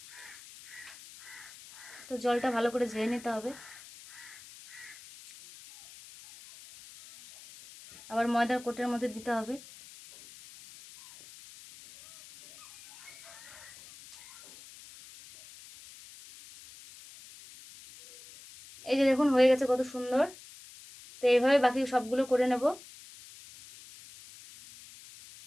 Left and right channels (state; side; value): noise; left; hiss, 19 dB below the sound